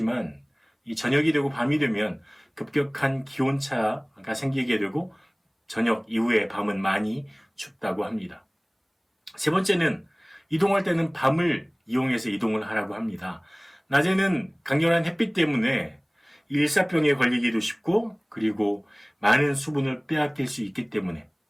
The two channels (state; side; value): identical; both; correlation 1.00